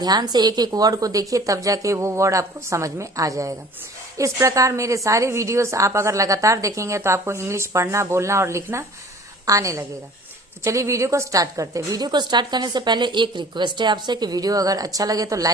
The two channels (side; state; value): both; normal; correlation 0.48